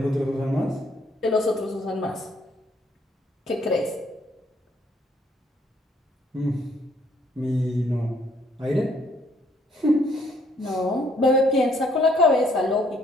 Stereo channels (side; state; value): both; normal; correlation 0.66